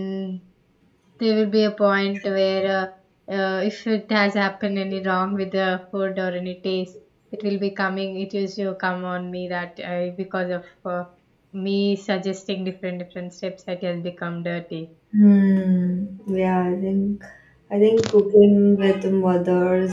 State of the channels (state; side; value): identical; both; correlation 1.00